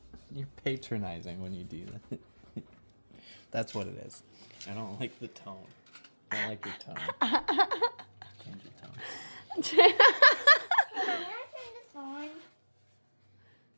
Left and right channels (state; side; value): inverted; both; correlation -1.00